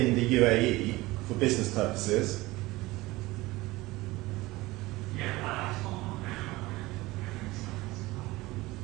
the UAE for business purposes?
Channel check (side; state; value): left; quieter; 20.0 dB